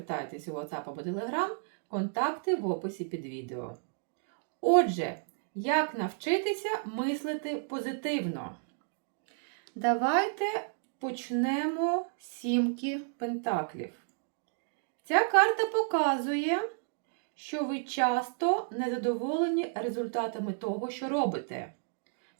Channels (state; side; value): silent; left; digital silence